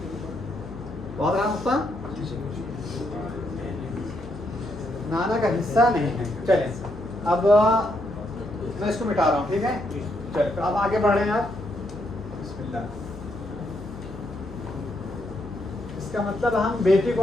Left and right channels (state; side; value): noise; left; hum, 14 dB below the sound